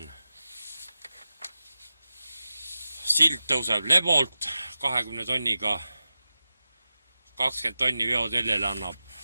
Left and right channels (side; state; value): both; inverted; correlation -0.93